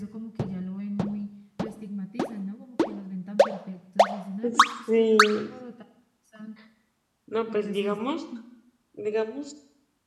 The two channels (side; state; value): both; identical; correlation 1.00